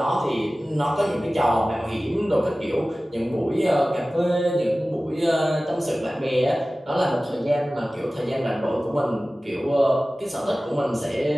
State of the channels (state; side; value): normal; both; correlation 0.97